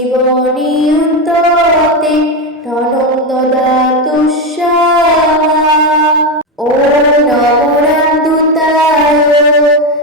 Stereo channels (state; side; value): normal; both; correlation 0.12